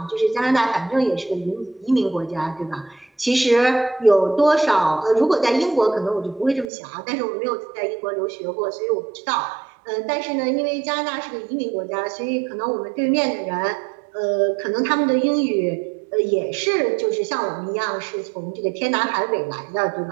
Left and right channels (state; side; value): drops out; left; at 6.7 s